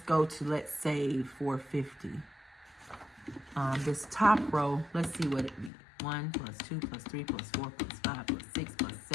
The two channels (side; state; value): right; drops out; at 5.7 s